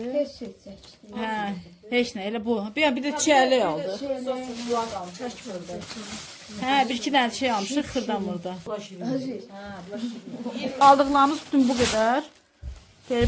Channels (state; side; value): identical; both; correlation 1.00